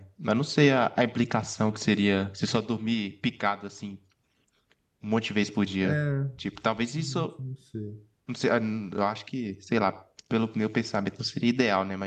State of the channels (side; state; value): both; identical; correlation 1.00